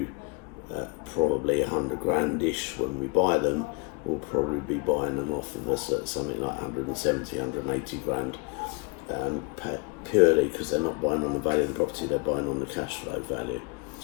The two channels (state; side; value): quieter; right; 29.9 dB